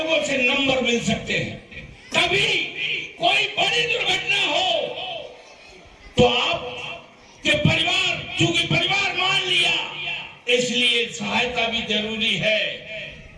से नंबर मिल सकते हैं। कभी कोई बड़ी दुर्घटना हो तो आपके परिवार, चूंकि परिवार मान लिया, इसलिए सहायता भी जरूरी है।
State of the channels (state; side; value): identical; both; correlation 1.00